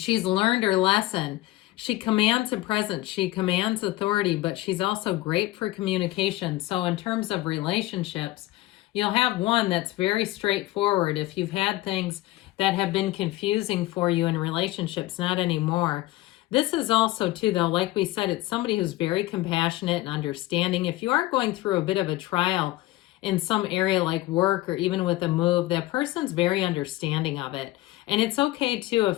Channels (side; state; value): right; quieter; 17.4 dB